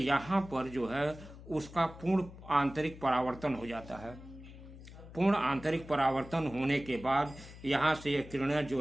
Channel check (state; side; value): noise; left; hum, 16 dB below the sound